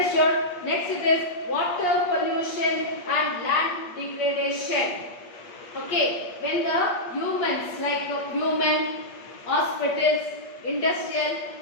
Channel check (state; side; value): late; right; 8.6 ms